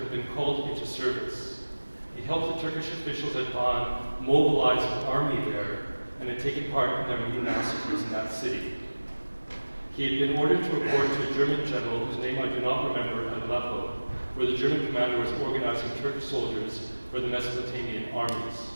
been called into service. He helped the Turkish officials at Van mobilize an army there and had taken part in their many massacres in that city. He had been ordered to report to a German general whose name I do not remember at Aleppo, where the German commander was organizing Turkish soldiers for the Mesopotamian armies.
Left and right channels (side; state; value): both; inverted; correlation -1.00